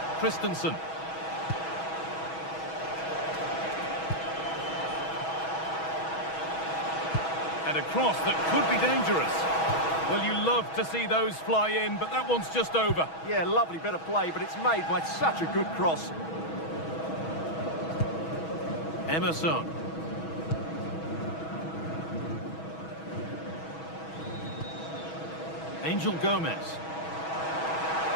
Christensen. And a cross that could be dangerous. Well, you love to see those fly in, but that one's just over. Yeah, lovely bit of play, but it's made by such a good cross. Emerson. Angel Gomez.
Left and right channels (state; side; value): late; right; 6.2 ms